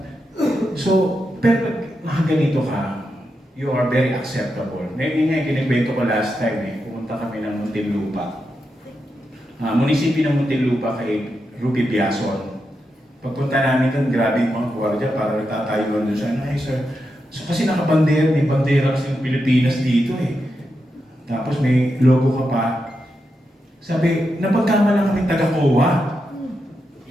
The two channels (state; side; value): normal; both; correlation 0.86